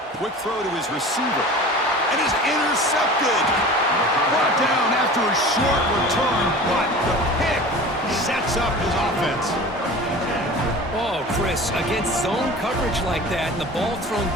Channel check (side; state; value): both; normal; correlation 0.38